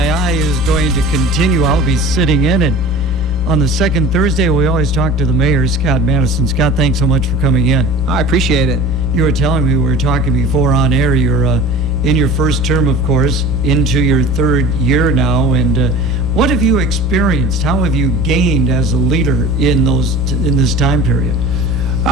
is going to continue. I'll be sitting in, and on the second Thursday, we always talk to the mayor, Scott Maddasion. Scott, thanks so much for coming in. I appreciate it. You were telling me, we were talking before on air, you're in your first term, of course, into your third year now, and what have you experienced? How have you gained as a leader in this time period?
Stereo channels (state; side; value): noise; left; hum, 12 dB below the sound